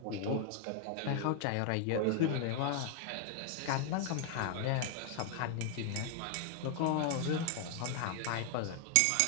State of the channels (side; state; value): both; different; correlation 0.00